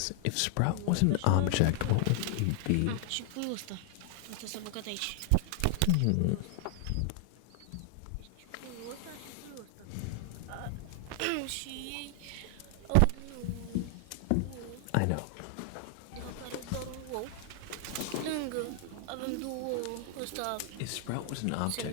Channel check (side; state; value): both; different; correlation 0.00